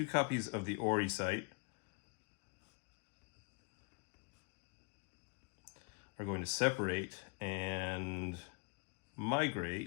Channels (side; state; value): right; quieter; 34.1 dB